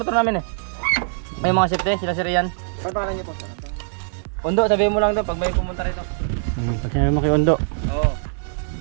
motor namin eh. May mga safety, sila si Rian. Ano pangalan niyo po? Undo, sabihin mo lang doon pag may pumunta rito. Pag sinabi mo kay Ondo. Oo.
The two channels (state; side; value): silent; left; digital silence